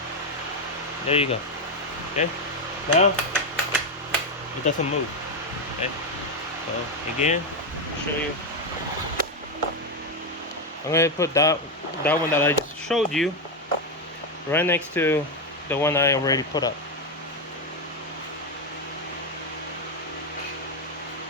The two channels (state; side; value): normal; both; correlation 0.07